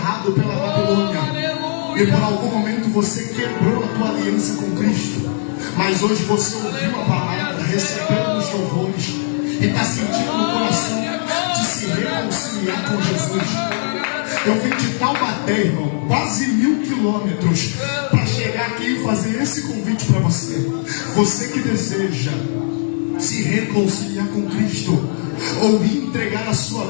pela Babilônia, e por algum momento você quebrou a tua aliança com Cristo, mas hoje você ouviu a palavra, recebeu os louvores e está sentindo no coração de se reconciliar com Jesus. Eu vim de Taubaté, irmão, quase 1000 quilômetros para chegar aqui e fazer esse convite para você. Você que deseja se reconciliar com Cristo ou entregar a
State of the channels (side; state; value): right; silent; digital silence